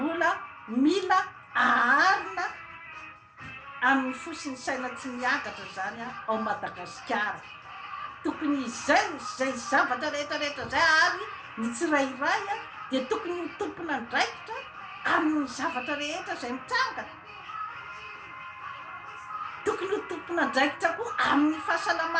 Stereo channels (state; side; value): identical; both; correlation 1.00